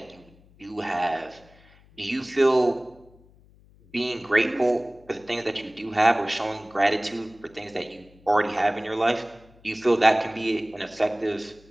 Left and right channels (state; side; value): noise; left; hum, 27 dB below the sound